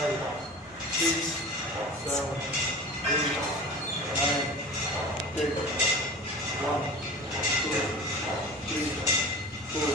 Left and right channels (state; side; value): normal; both; correlation 0.36